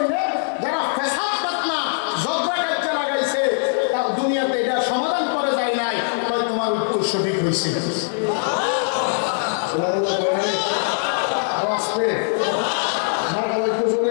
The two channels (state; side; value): silent; right; digital silence